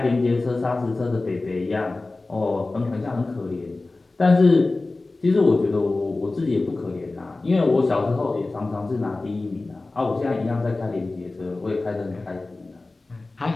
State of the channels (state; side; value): quieter; right; 3.2 dB